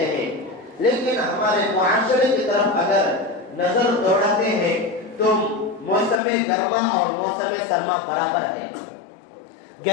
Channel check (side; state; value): right; drops out; at 6.2 s